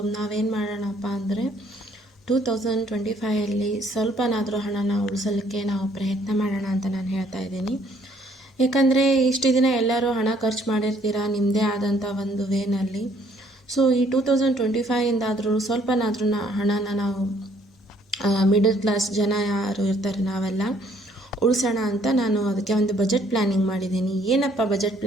ನಾವೇನು ಮಾಡೋಣಪ್ಪ ಅಂದರೆ 2025ಅಲ್ಲಿ ಸ್ವಲ್ಪನಾದರೂ ಹಣನ ಉಳಿಸಲಿಕ್ಕೆ ನಾವು ಪ್ರಯತ್ನ ಮಾಡೋಣ ಅಂತ ನಾನು ಹೇಳ್ತಾ ಇದ್ದೀನಿ. ಯಾಕಂದರೆ ಇಷ್ಟು ದಿನ ಎಲ್ಲರೂ ಹಣ ಖರ್ಚು ಮಾಡಿರ್ತೀರ ನಿಮ್ಮದೇ ಆದಂಥ ಒಂದು ವೇನಲ್ಲಿ. ಸೊ ಈ 2025ಇಂದಾದರೂ ಸ್ವಲ್ಪನಾದ್ರೂ ಹಣನ ನಾವು ಮಿಡಲ್ ಕ್ಲಾಸ್ ಜನ ಯಾರು ಇರ್ತಾರೆ ನಾವೆಲ್ಲ ಉಳಿಸೋಣ ಅಂತ ನಾನು ಅದಕ್ಕೆ ಒಂದು ಬಜೆಟ್ ಪ್ಲ್ಯಾನಿಂಗ್ ಮಾಡಿದ್ದೀನಿ. ಏನಪ್ಪ ಬಜೆಟ್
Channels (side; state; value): both; normal; correlation 0.64